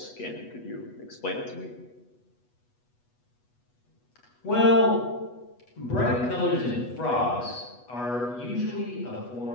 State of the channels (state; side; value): late; right; 8.2 ms